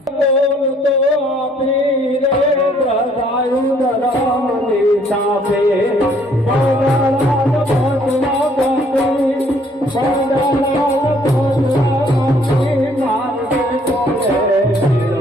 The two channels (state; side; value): normal; both; correlation 0.63